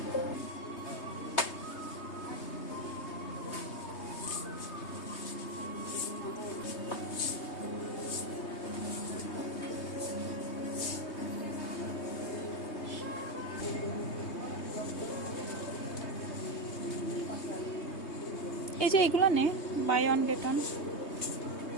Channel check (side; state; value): right; late; 3.2 ms